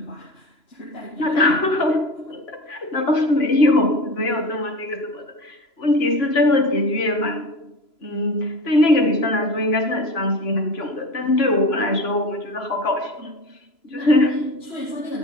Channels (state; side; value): late; right; 3.0 ms